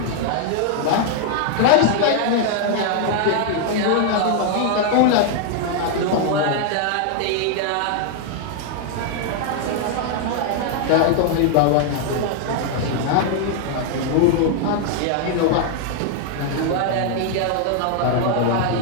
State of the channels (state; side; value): different; both; correlation 0.00